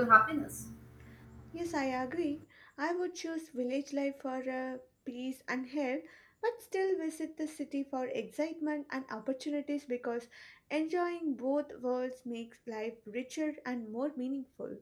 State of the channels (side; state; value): both; identical; correlation 1.00